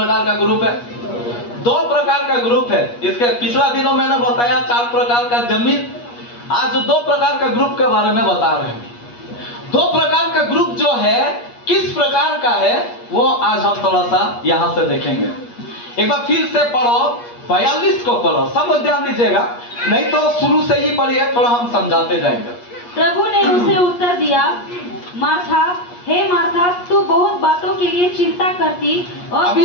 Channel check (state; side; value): late; right; 8.4 ms